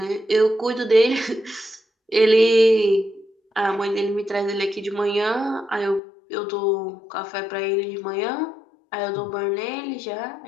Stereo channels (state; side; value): drops out; right; at 6.0 s